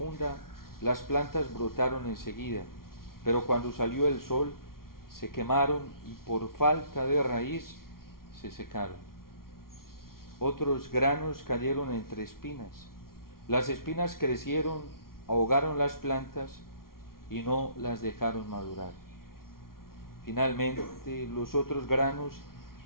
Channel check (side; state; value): right; late; 0.93 ms